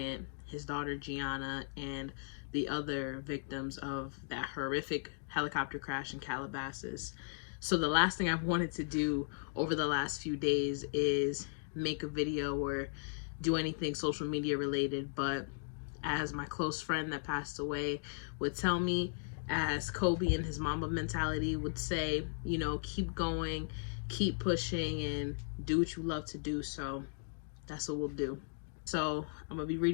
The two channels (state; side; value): silent; right; digital silence